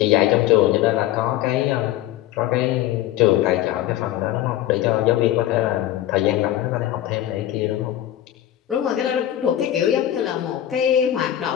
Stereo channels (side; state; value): right; quieter; 12.8 dB